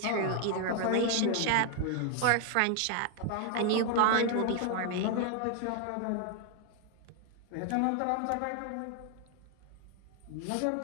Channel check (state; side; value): different; both; correlation 0.00